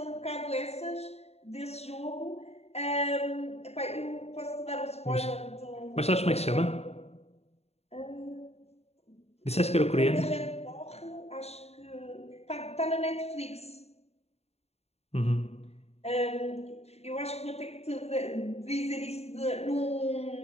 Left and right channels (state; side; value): late; right; 0.30 ms